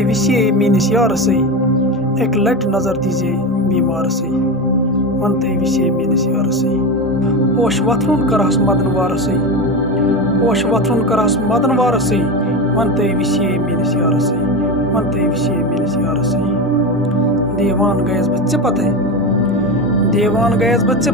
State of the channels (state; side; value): normal; both; correlation 0.20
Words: وِسے میٲنِس یارسٕے اَکہِ لٹہِ نظر دیٖزے بیمارسٕے ون تُہۍ وِسے میٲنِس یارسٕے پوش وۄتھرُن کرہس مدن وارسٕے پوش وۄتھرُن کرہس مدن وارسٕے ون تُہۍ وِسے میٲنِس یارسٕے ون تُہۍ وِسے میٲنِس یارسٕے دیوان گٔیَس بہٕ ژےٚ پتے دیوان گٔیَس بہٕ